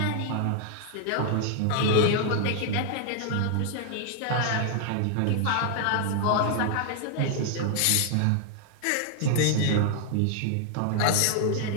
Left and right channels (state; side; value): different; both; correlation 0.00